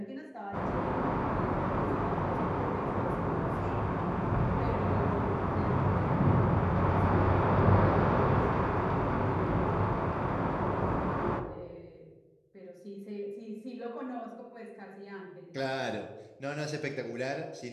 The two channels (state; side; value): identical; both; correlation 1.00